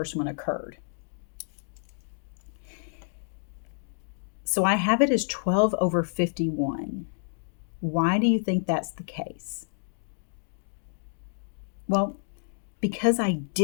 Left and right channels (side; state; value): right; silent; digital silence